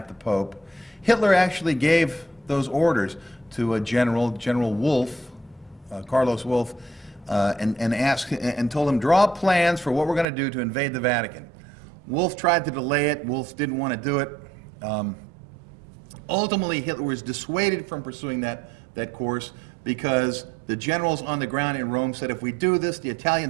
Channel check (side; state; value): left; drops out; at 10.2 s